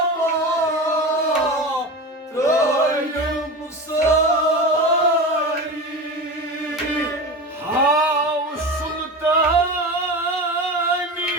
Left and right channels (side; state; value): both; normal; correlation 0.27